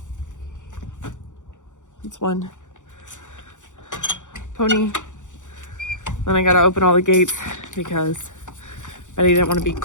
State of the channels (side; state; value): right; late; 0.86 ms